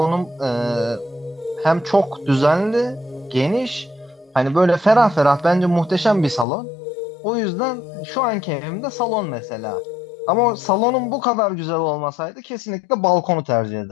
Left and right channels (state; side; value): drops out; right; at 6.5 s